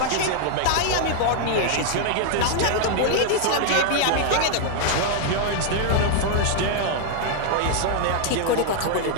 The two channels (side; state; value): both; different; correlation 0.00